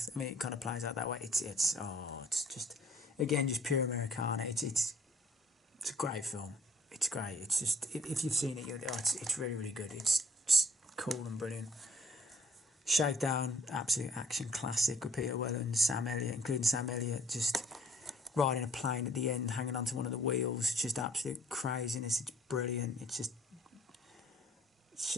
I mean, it kind of plays out that way. It's just, again, just pure Americana. It's a great film. It's great. It's just, if you've seen it, it's really, really good. It's just cool and brilliant. Shakedown, absolute action classic with Peter Weller and Sam Elliott, including Sam Elliott, just riding a plane at the end, hanging onto one of the wheels. Just absolute craziness. It's brilliant. It's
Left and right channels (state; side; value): normal; both; correlation 0.58